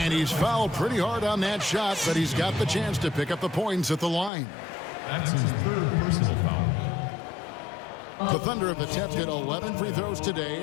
he's fouled pretty hard on that shot, but he's got the chance to pick up the points at the line. That's his 3rd personal foul. The Thunder have attempted 11 free throws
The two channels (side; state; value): right; drops out; at 4.3 s